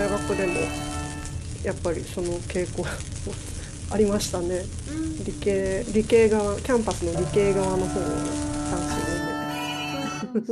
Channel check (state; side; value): identical; both; correlation 1.00